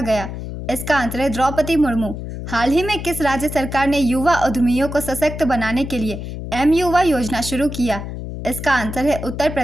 गया? इसका आंसर है द्रौपदी मुर्मू। हाल ही में किस राज्य सरकार ने युवा उद्यमियों को सशक्त बनाने के लिए M-युवा योजना शुरू किया? इसका आंसर है उत्तर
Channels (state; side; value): noise; left; hum, 8 dB below the sound